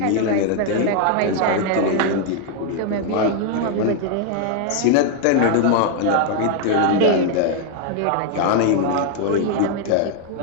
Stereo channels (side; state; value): both; different; correlation 0.00